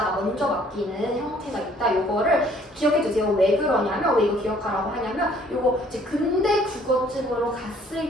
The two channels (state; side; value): normal; both; correlation 0.59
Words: 먼저 바뀌는 형태가 있다. 요거를 기억해 주세요. 왜 그러냐면 왜 이거 기억하라고 하냐면 요거 이제 근대 국어집으로